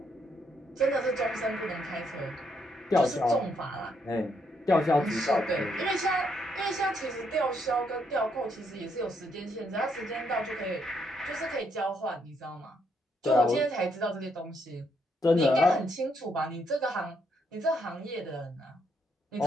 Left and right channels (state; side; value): normal; both; correlation 0.75